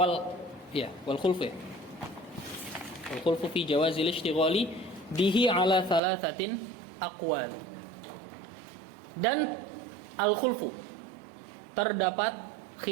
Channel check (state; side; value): drops out; left; at 6.0 s